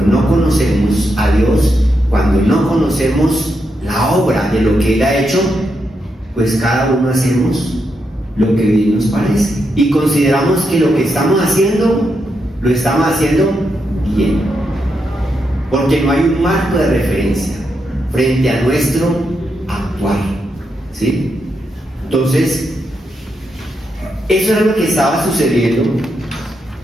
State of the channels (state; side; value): normal; both; correlation 0.83